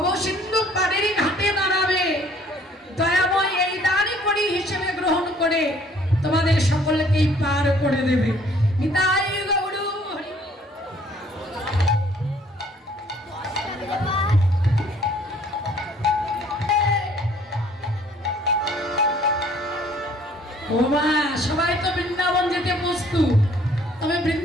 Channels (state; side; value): normal; both; correlation 0.59